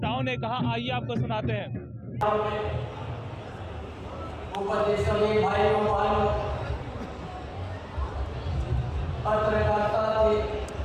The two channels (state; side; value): identical; both; correlation 1.00